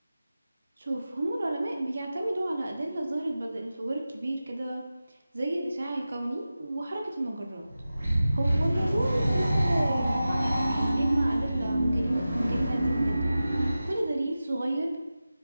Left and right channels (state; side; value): inverted; both; correlation -0.94